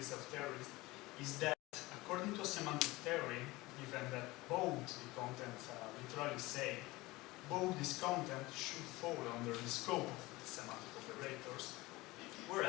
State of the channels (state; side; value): quieter; right; 20.8 dB